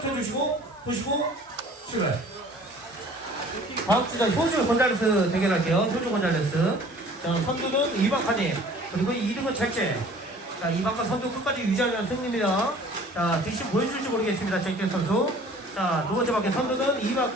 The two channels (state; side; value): normal; both; correlation 0.49